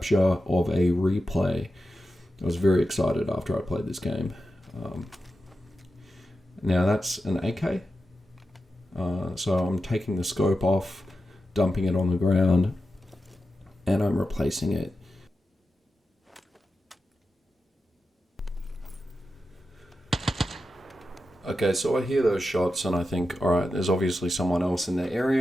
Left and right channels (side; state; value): both; normal; correlation 0.90